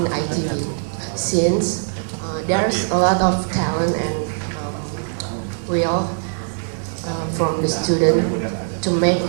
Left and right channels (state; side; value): silent; left; digital silence